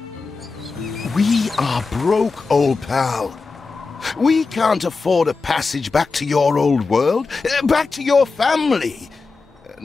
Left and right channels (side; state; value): right; quieter; 4.3 dB